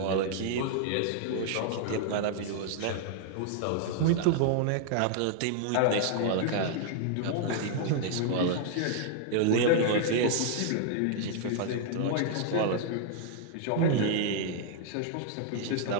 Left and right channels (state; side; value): different; both; correlation 0.00